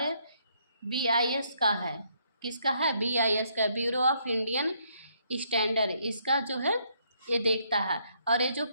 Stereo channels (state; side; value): inverted; both; correlation -0.71